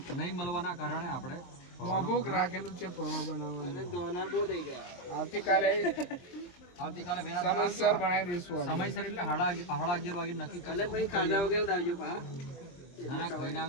નહીં મળવાના કારણે આપણે મોભુક રાખેલું છે પૌવા બનાવવાનું. અને દોના બહુ થઈ ગયા. આવતીકાલે સમયસર બનાવી દઈશું. સમયસર એટલે 11:30 વાગે નક્કી કરે. ભાઈ ખાધા વગર આવજો પા. ના ખાઈને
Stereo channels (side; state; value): right; late; 23 ms